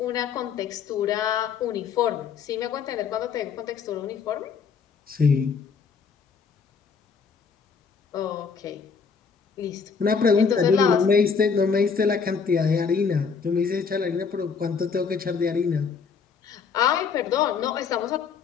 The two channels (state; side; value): quieter; right; 5.8 dB